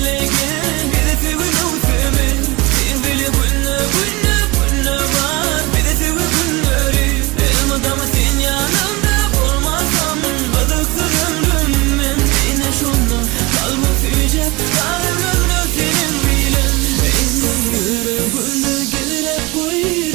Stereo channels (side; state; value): left; quieter; 23.3 dB